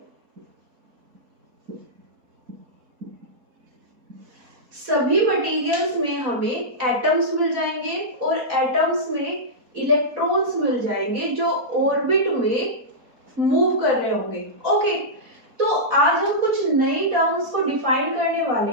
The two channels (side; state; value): left; late; 4.2 ms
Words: सभी मटेरियल्स में हमें एटम्स मिल जाएंगे और एटम्स में इलेक्ट्रॉन्स मिल जाएंगे जो ऑर्बिट में मूव कर रहे होंगे। ओके, तो आज हम कुछ नई टर्म्स को डिफाइन करने